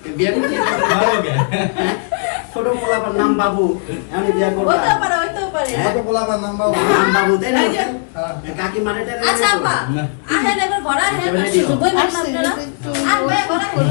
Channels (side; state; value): right; silent; 55 dB below the other